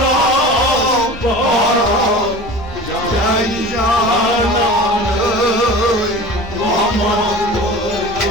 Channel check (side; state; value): both; normal; correlation 0.37